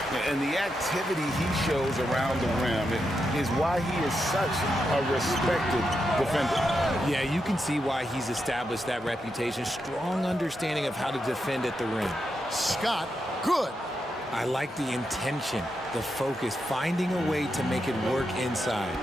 And the activity he shows around the rim is why he is such a respected defender. Yeah, you can see why he's established that reputation. Strong understanding of how to defend at the rim. Scott, good. I like the intention, the focus, finding a way to make it work inside.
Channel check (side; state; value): both; normal; correlation 0.85